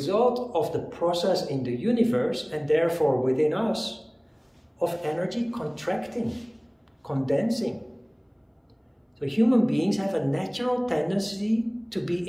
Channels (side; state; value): both; identical; correlation 1.00